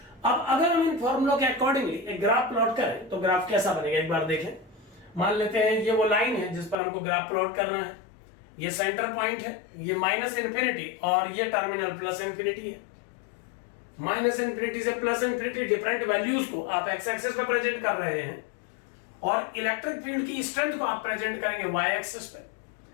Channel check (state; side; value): drops out; right; at 6.8 s